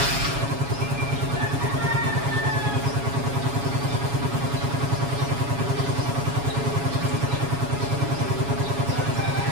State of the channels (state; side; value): late; left; 7.2 ms